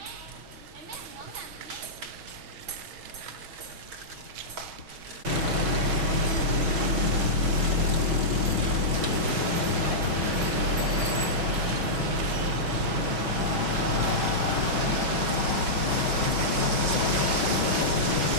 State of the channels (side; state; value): left; late; 6.1 ms